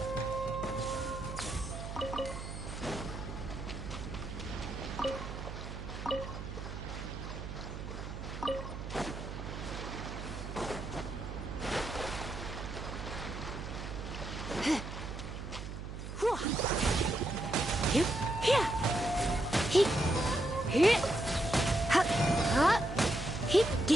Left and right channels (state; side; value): noise; right; hum, 8 dB below the sound